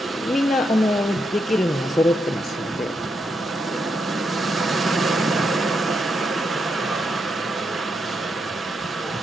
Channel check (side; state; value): both; normal; correlation 0.82